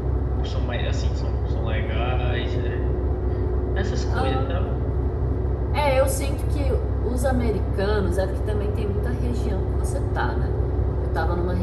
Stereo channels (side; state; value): both; identical; correlation 1.00